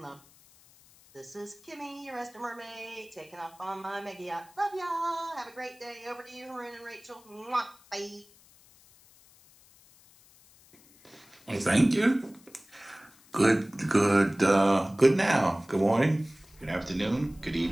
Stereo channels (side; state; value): left; noise; hiss, 27 dB below the sound